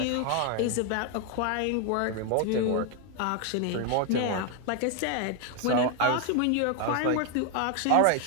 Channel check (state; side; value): different; both; correlation 0.01